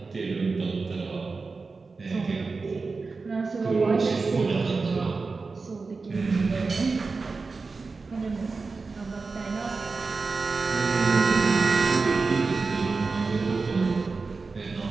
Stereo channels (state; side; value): quieter; left; 4.2 dB